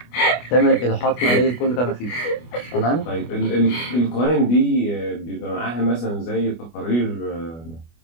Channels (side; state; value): right; late; 25 ms